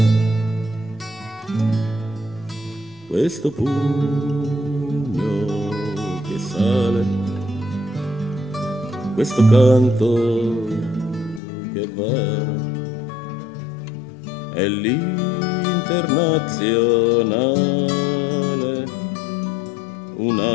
Questo pugno che sale, questo canto che va, è l'internazionale,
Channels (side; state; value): right; drops out; at 11.4 s